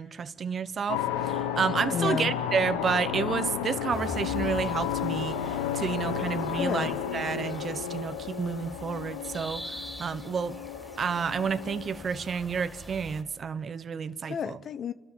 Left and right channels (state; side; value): normal; both; correlation 0.54